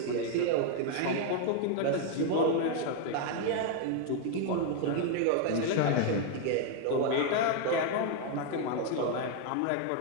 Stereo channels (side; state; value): both; different; correlation 0.00